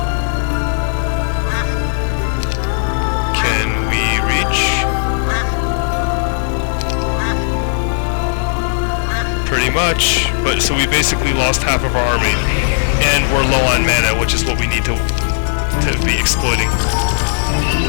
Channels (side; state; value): right; silent; digital silence